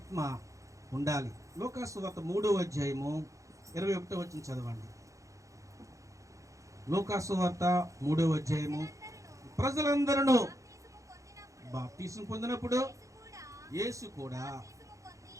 ఉండాలి. లూకా సువార్త 3వ అధ్యాయము 21వ వచనం చదవండి. లూకా సువార్త 3వ అధ్యాయము. ప్రజలందరూ బాప్తిసం పొందినప్పుడు యేసు కూడా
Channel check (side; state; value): left; late; 0.15 ms